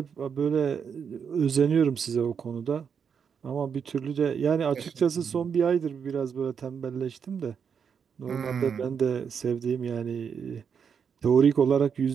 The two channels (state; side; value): quieter; left; 6.9 dB